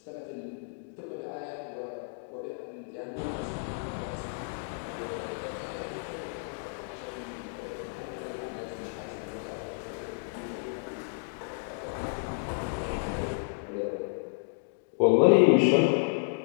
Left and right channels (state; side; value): silent; right; digital silence